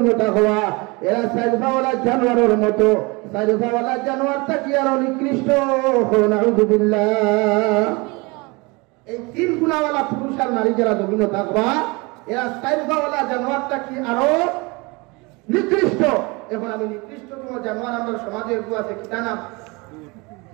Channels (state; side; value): quieter; left; 26.6 dB